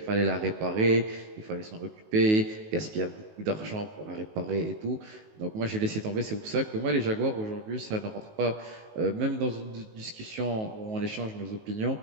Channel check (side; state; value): left; late; 19 ms